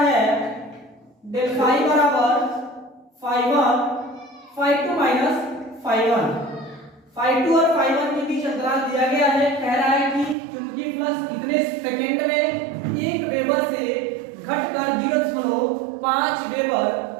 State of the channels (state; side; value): drops out; left; at 10.4 s